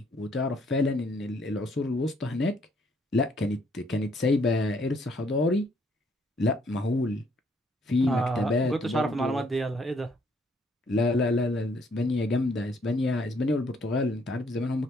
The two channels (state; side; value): normal; both; correlation 0.67